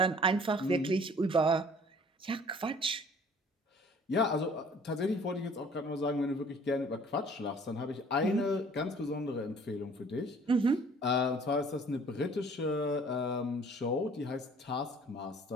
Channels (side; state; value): both; normal; correlation 0.53